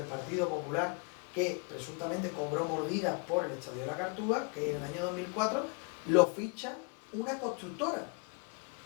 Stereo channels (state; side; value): quieter; right; 34.2 dB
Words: Partido Popular, que presuntamente cobró mordidas por el Estadio de la Cartuja, que en el año 2004 lo ficha una constructora.